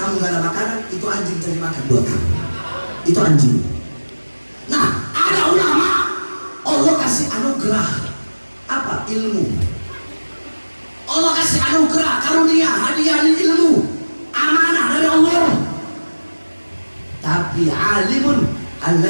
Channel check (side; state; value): both; inverted; correlation -1.00